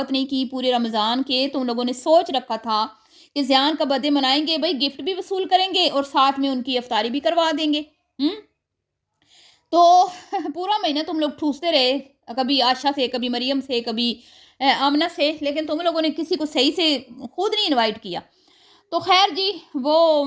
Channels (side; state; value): both; identical; correlation 1.00